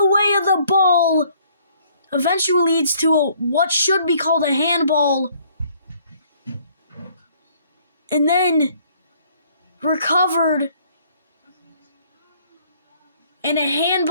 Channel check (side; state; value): both; inverted; correlation -0.61